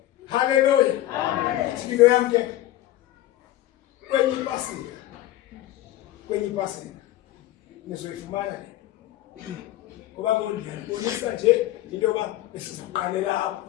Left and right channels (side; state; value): right; quieter; 14.6 dB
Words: Haleluya. Ithilo yam ke kwenye ipasika nizoyifumana le, ngoba ndiyabonisa nje into yoba besizoqalela apho.